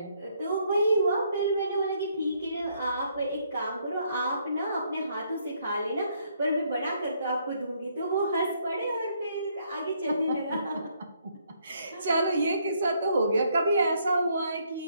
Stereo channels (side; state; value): both; inverted; correlation -0.70